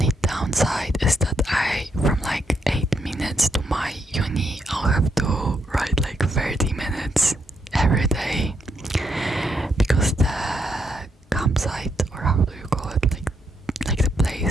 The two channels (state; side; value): normal; both; correlation 0.78